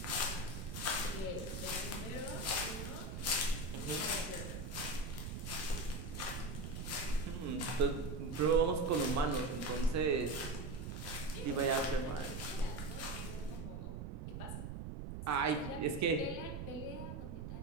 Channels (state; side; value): noise; right; rumble, 6 dB below the sound